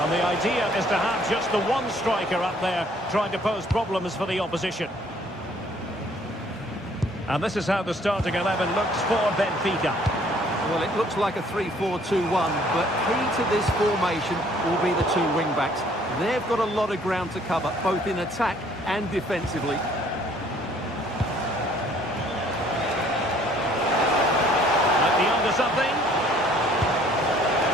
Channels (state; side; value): normal; both; correlation 0.60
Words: the idea is to have just the one striker up there trying to pose problems for the opposition. And this is how the starting 11 looks for Benfica. Well, it looks like a 3-4-2-1, but key to this formation will be the two wing-backs. They've got a lot of ground to cover, both in attack and defensively. Might be onto something.